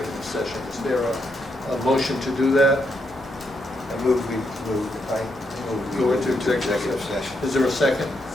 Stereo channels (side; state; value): both; normal; correlation 0.79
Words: session. Is there a motion to do that? I move we Go into executive session. Is there a second?